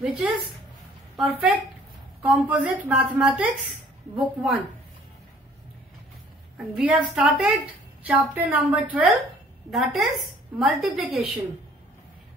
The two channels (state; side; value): normal; both; correlation 0.56